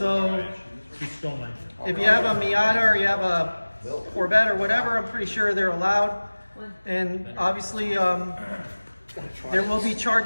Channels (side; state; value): both; inverted; correlation -1.00